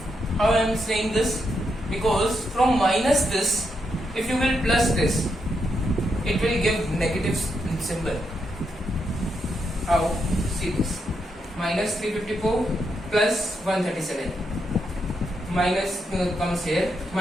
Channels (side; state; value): both; normal; correlation 0.81